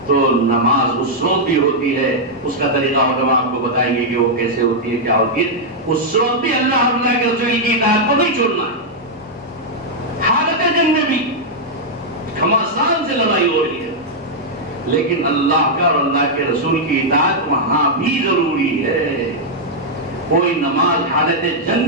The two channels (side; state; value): both; normal; correlation -0.04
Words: تو نماز اس وقت بھی ہوتی ہے، اس کا طریقہ علماء آپ کو بتائیں گے کہ وہ کیسے ہوتی ہے، کیا ہوتی ہے۔ اس وقت بھی اللہ کے رسول کی اطاعت کو نہیں چھوڑنا ہے، حالت جنگ میں بھی گھمسان سے لڑائی ہو رہی ہے، لیکن اللہ کا اور اللہ کے رسول کی اطاعت وہاں بھی ضروری ہے۔ کوئی نماز حالت جنگ